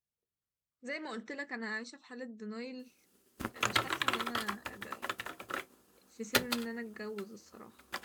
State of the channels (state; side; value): identical; both; correlation 1.00